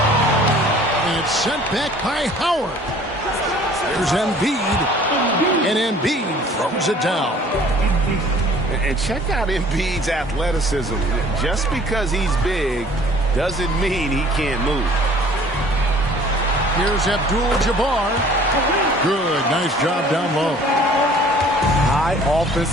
And it's sent back by Howard. There's Embiid. And Embiid throws it down. And check out Embiid's athleticism. Just because he's big doesn't mean he can't move. Here's Abdul-Jabbar. Good. Nice job down low. High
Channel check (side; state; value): both; normal; correlation 0.52